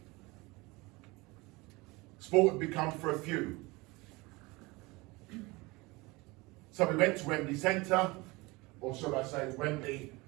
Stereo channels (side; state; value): left; quieter; 23.6 dB